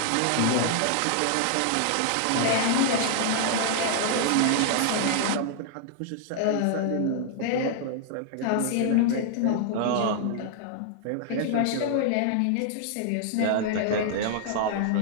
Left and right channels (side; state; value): both; different; correlation 0.00